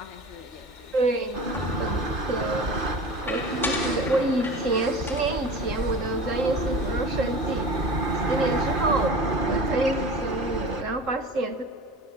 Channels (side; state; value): both; normal; correlation 0.36